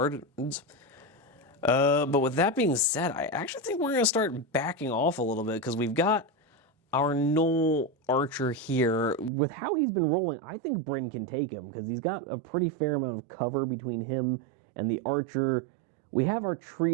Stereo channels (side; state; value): left; drops out; at 9.3 s